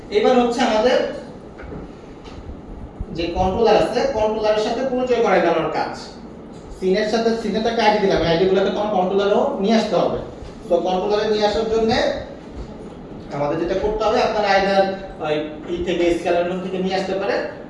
এবার হচ্ছে আমাদের যে কন্ট্রোলার আছে কন্ট্রোলারের সাথে পরিচয় করাই দেওয়ার কাজ সিনের সাথে সিনেটা একটা আইডি দিলাম আইডিগুলোকে কন্ট্রোলারও নিয়ে আসতে হবে তো কন্ট্রোলারে নিয়ে আসার জন্য আমাদের যেটা করতে হবে আপনারা আইদার ই থেকে স্কেলার রুম থেকে নিয়ে আসতে পারেন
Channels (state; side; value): identical; both; correlation 1.00